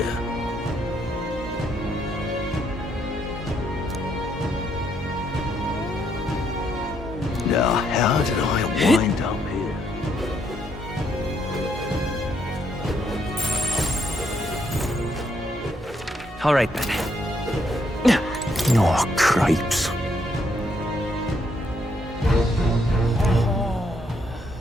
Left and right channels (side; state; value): both; normal; correlation 0.74